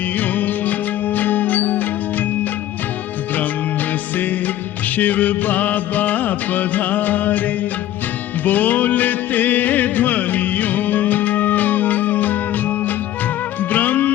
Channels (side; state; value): right; quieter; 13.2 dB